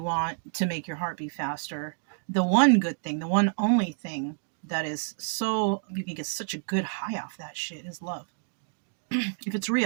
want to make your heart beat faster, the one good thing, the one only thing that is so, you can get such a good high off that shit, is love. If it's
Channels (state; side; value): silent; left; digital silence